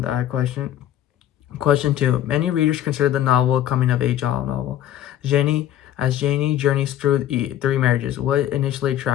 question. Question two: many readers consider the novel a coming of age novel. Janie journeys through three marriages, what initially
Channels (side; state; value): right; quieter; 11.7 dB